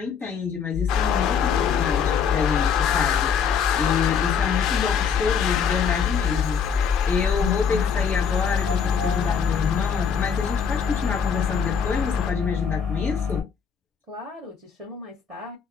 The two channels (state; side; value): quieter; right; 6.8 dB